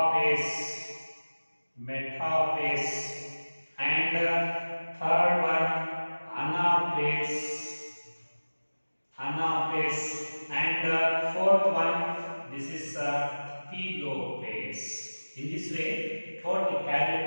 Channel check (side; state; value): both; inverted; correlation -1.00